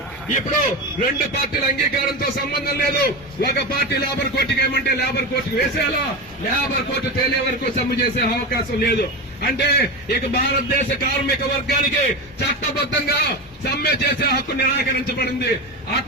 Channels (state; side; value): normal; both; correlation 0.20